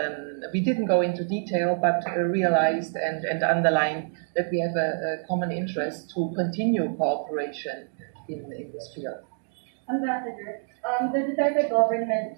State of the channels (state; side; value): silent; left; digital silence